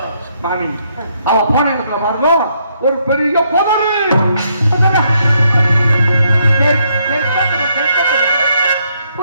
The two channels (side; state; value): both; inverted; correlation -0.74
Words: மாமி அவ போன இடத்துல பாருங்க, ஒரு பெரிய புதரு.